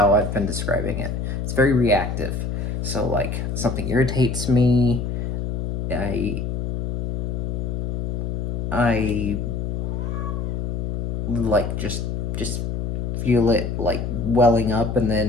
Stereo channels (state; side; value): noise; left; hum, 2 dB below the sound